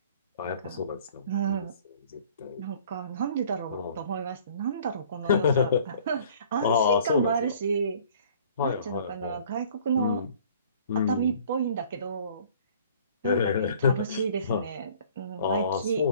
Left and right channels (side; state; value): both; inverted; correlation -0.53